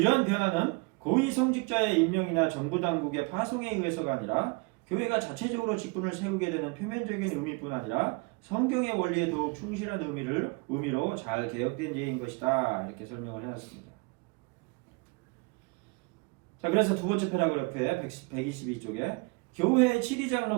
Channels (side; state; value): left; quieter; 29.6 dB